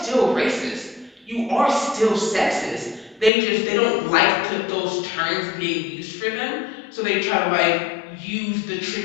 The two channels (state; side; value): drops out; right; at 3.3 s